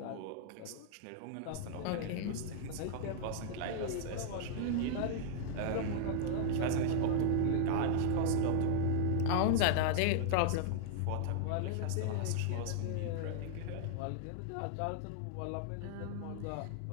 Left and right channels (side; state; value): both; different; correlation -0.01